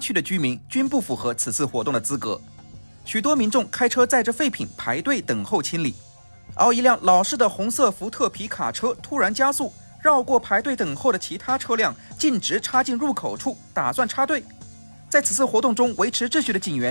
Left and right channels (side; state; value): both; inverted; correlation -1.00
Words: 的居民均不符合此次活动的资格。许多民众开车载着废品排队等候清理，而一辆老式的红色福特皮卡车突然加速，绕过排队等候的其他车辆，径直插进入口处，打算插队。在此次活动中维持秩序的警